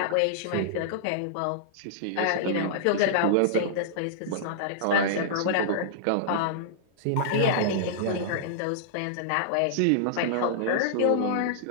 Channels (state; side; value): different; both; correlation -0.02